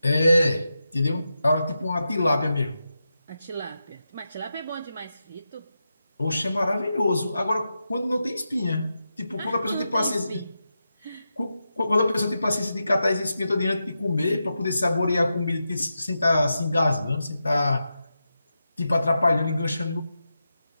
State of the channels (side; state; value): both; inverted; correlation -0.89